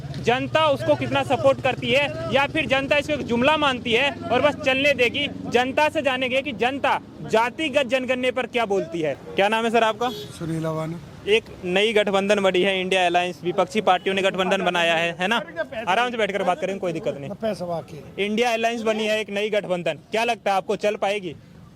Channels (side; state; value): both; identical; correlation 1.00